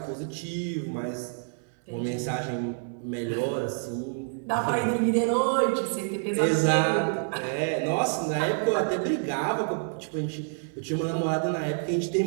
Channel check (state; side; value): silent; left; 59 dB below the other